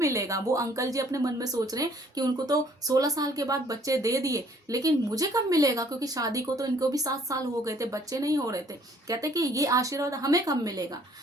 वो अंकल जी अपने मन में सोच रहे हैं कि उनको तो 16 साल के बाद बच्चे दे दिए, लेकिन मुझे कब मिलेगा, क्योंकि शादी को तो इनको भी 7 साल हो गए थे, बच्चे नहीं हो रहे थे। कहते कि ये आशीर्वाद हमें कब मिलेगा।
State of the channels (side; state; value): both; normal; correlation 0.60